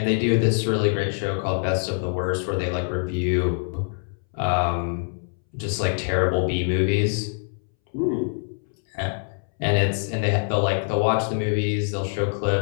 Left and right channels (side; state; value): right; silent; 62 dB below the other